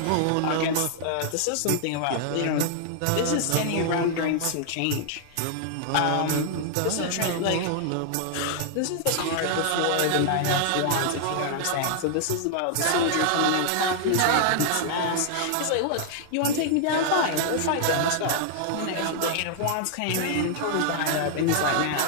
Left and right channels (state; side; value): different; both; correlation 0.00